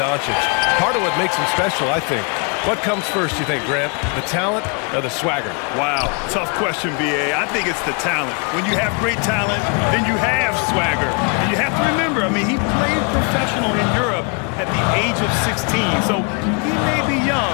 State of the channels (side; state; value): right; quieter; 36.2 dB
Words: Part of what makes him special, I think. What comes first, you think, Grant? The talent or the swagger? Wow, tough question, B.A. I think it's the talent. When you have great talent, then you have swagger. And you have to remember, I mean, he played professional in Europe at the age of 16. So he may be young,